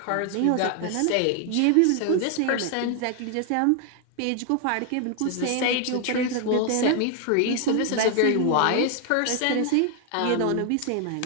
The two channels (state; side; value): different; both; correlation 0.00